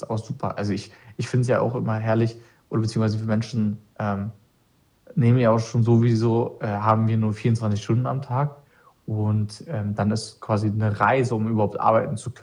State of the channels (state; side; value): identical; both; correlation 1.00